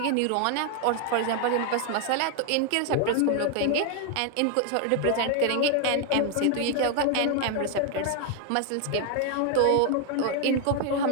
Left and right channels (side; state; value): both; different; correlation 0.01